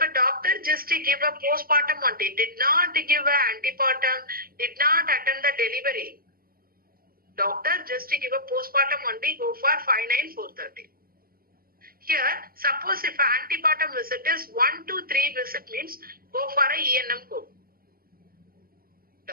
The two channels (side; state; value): left; late; 0.43 ms